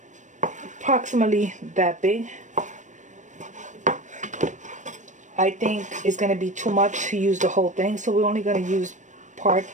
approximately that big. I think it's going to be too much to use the whole thing, so we're only going to use part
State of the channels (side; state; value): left; late; 0.35 ms